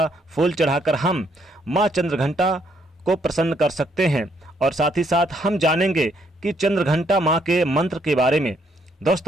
फूल चढ़ाकर हम माँ चंद्रघंटा को प्रसन्न कर सकते हैं। और साथ ही साथ हम जानेंगे कि चंद्रघंटा माँ के मंत्र के बारे में।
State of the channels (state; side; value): normal; both; correlation 0.71